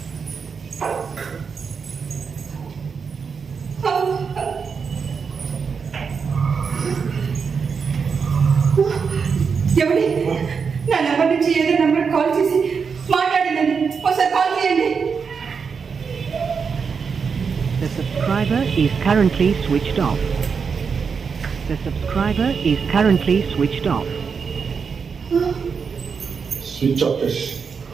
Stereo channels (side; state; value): left; quieter; 5.8 dB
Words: ఎవరి నా నెంబర్ నుంచి ఏదో నెంబర్ కాల్ చేసి మాట్లాడిందండి. ఒకసారి కాల్ చేయండి. The subscriber is currently switched off. The subscriber is currently switched off. Switch off చేసి